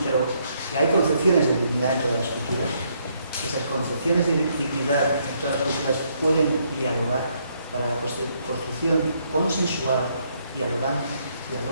pero que hay concepciones de dignidad en todas las culturas. Esas concepciones de dignidad en todas las culturas pueden dialogar para la construcción consensual, dialogante,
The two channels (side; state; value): both; inverted; correlation -0.72